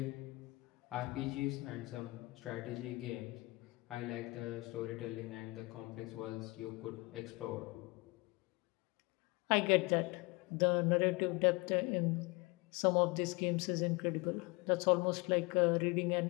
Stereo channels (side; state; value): right; quieter; 24.9 dB